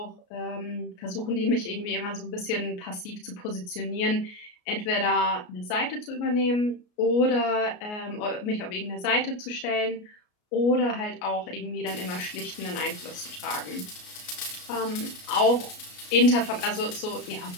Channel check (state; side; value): late; right; 33 ms